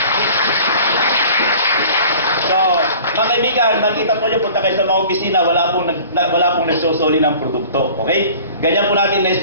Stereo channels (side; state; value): both; inverted; correlation -0.45